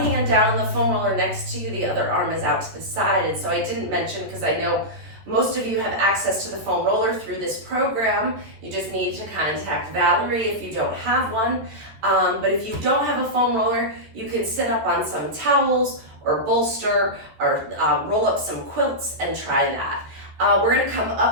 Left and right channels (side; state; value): left; late; 14 ms